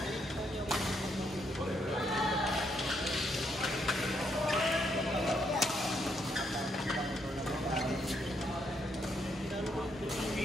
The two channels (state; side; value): normal; both; correlation 0.75